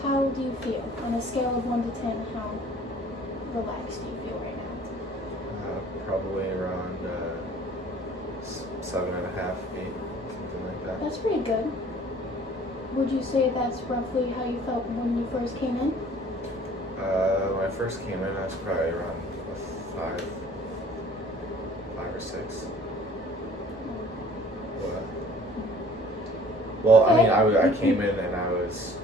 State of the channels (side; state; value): both; normal; correlation 0.51